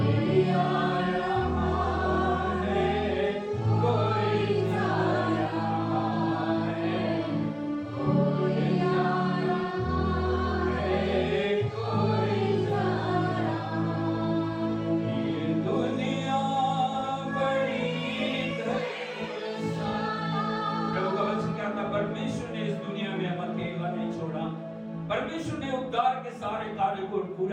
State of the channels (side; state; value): both; identical; correlation 1.00